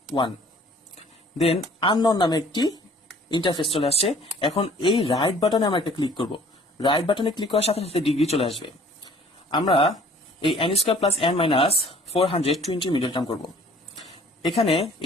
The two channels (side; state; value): both; normal; correlation 0.53